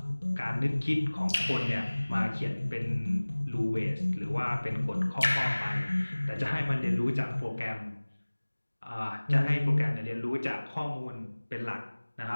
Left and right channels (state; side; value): inverted; both; correlation -1.00